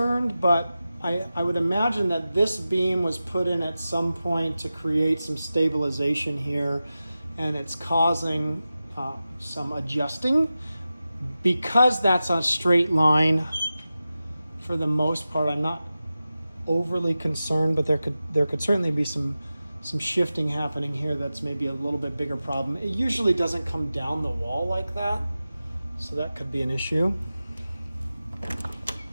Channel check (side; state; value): both; inverted; correlation -0.94